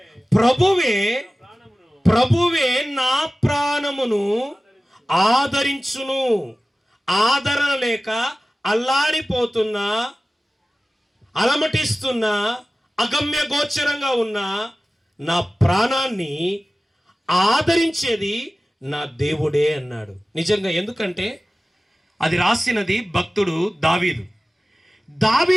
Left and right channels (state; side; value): normal; both; correlation 0.96